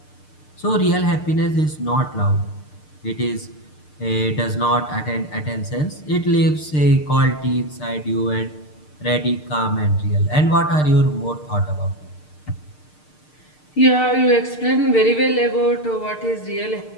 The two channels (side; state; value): right; late; 6.6 ms